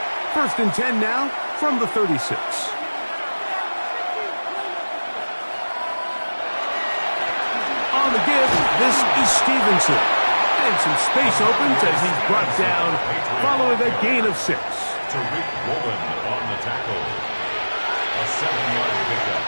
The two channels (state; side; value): inverted; both; correlation -1.00